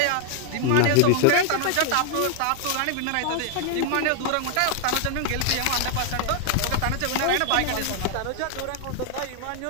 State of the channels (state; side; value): different; both; correlation 0.00